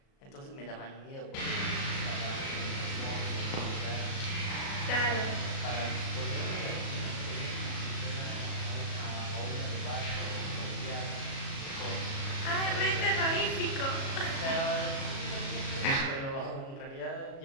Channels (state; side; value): late; right; 37 ms